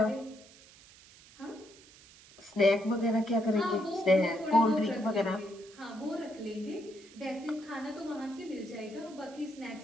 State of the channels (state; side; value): noise; right; hiss, 23 dB below the sound